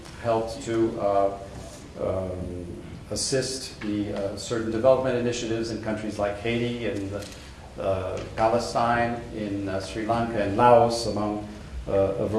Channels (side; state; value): both; identical; correlation 1.00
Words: helped to assist the certain development initiatives in countries like Haiti and Palestine, in Sri Lanka and Laos, among a